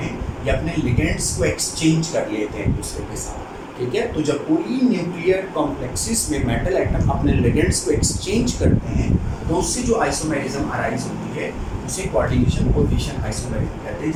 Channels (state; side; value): identical; both; correlation 1.00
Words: हैं, ये अपने लिगेंड्स को एक्सचेंज कर लेते हैं एक दूसरे के साथ। ठीक है, तो जब पॉलीन्यूक्लियर कॉम्प्लेक्सेस में मेटल आइटम अपने लिगेंड्स को एक्सचेंज करते हैं तो उससे जो आइसोमेरिज्म अराइज होती है उसे कोऑर्डिनेशन पोजीशन आइसोमेरिज्म कहते हैं।